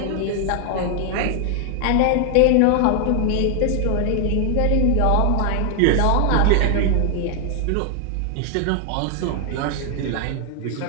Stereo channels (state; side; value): different; both; correlation 0.00